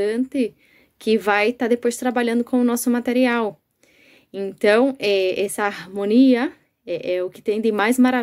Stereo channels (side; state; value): both; identical; correlation 1.00